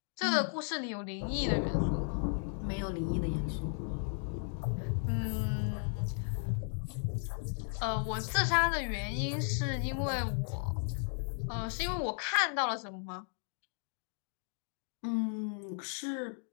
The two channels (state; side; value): silent; right; 54 dB below the other